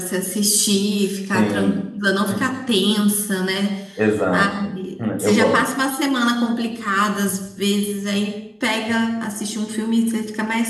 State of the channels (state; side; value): identical; both; correlation 1.00